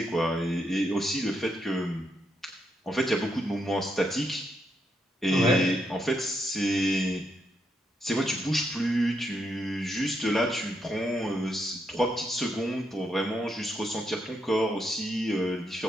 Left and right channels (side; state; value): both; normal; correlation 0.80